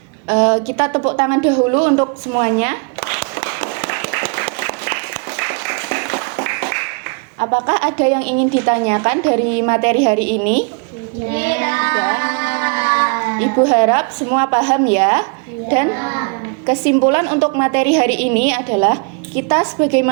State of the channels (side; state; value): left; quieter; 35.5 dB